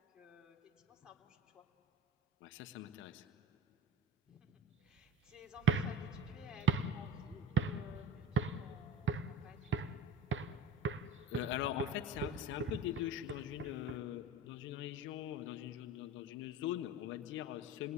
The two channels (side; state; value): both; normal; correlation 0.37